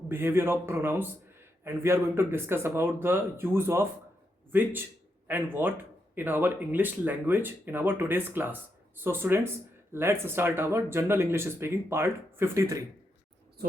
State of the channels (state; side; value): normal; both; correlation 0.82